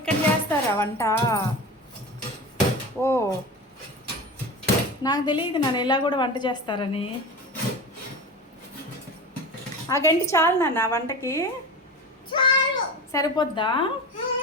చేస్తారా వంట? ఓ నాకు తెలియదు నాన్న ఇలా కూడా వంట చేస్తారని. ఆ గంటి చాలు నాన్న వంటకి? సరిపోద్దా?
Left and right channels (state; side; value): normal; both; correlation 0.30